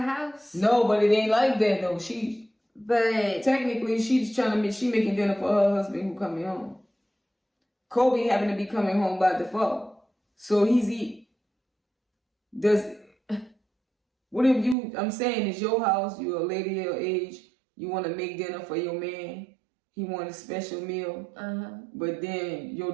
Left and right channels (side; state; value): left; drops out; at 14.8 s